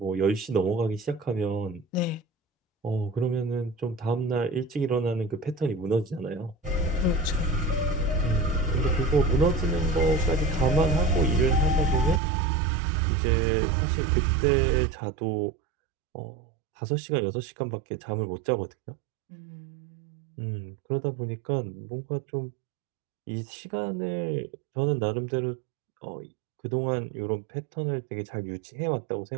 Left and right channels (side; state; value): left; drops out; at 12.2 s